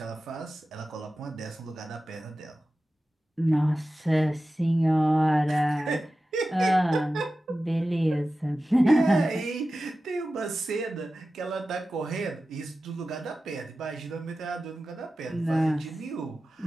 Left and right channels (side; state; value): both; normal; correlation 0.94